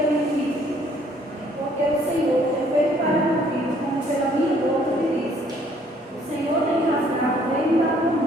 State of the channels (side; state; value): both; normal; correlation 0.62